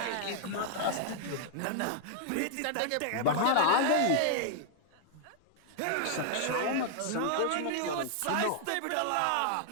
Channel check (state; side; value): different; both; correlation -0.01